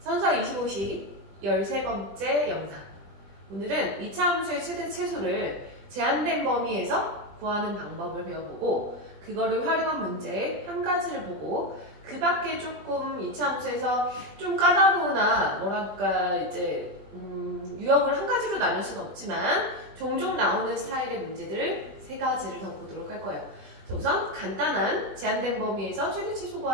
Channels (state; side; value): late; left; 20 ms